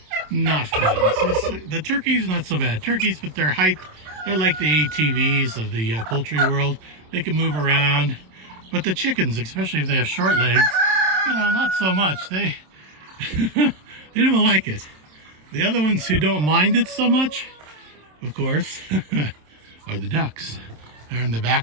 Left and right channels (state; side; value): late; left; 27 ms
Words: not fun. The turkeys, not so bad. Turkeys, but they're like the ATVs of the poultry world. They can move around, but the chickens, especially if they have short legs, you know, not so much. They they don't like it. The other ones who don't mind it so much, of course, are the ducks. They're in the